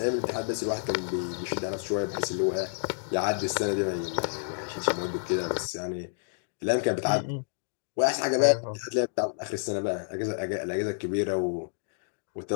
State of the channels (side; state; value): right; silent; digital silence